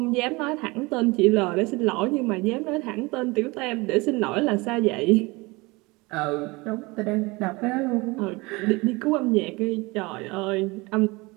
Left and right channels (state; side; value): quieter; left; 24.3 dB